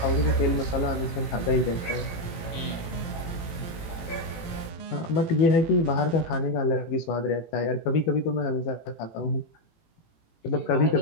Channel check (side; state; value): right; late; 18 ms